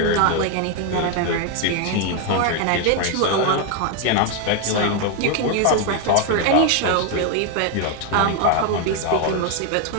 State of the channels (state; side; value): different; both; correlation 0.01